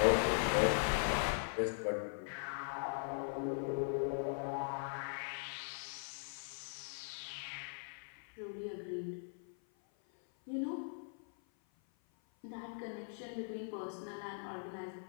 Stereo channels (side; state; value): right; silent; 51 dB below the other